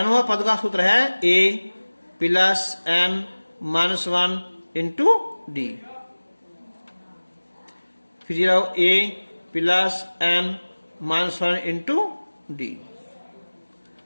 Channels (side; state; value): both; inverted; correlation -1.00